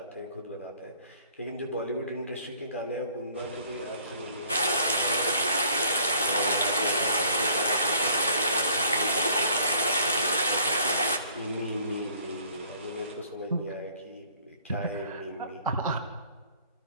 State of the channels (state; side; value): inverted; both; correlation -0.58